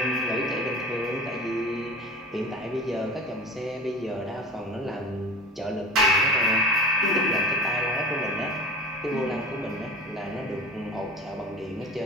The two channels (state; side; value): normal; both; correlation 0.35